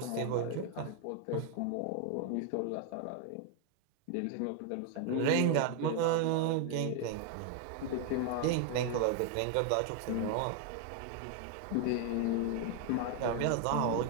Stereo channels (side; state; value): both; different; correlation 0.00